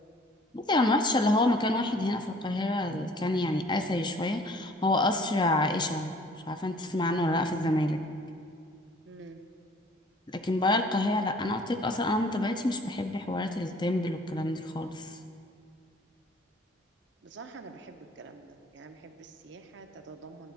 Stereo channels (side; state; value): both; normal; correlation 0.53